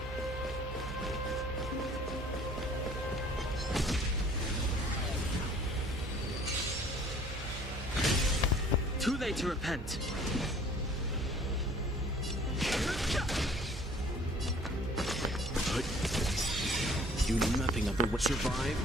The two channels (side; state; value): right; noise; hum, 8 dB below the sound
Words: Too late to repent. Do nothing of the way.